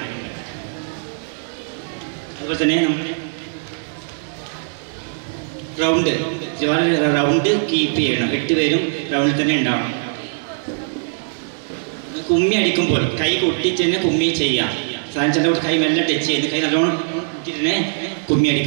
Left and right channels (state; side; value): silent; left; 65 dB below the other